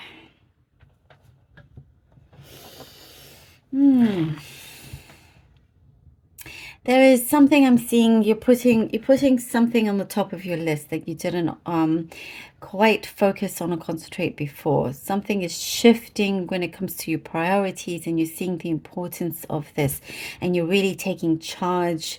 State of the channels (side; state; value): both; identical; correlation 1.00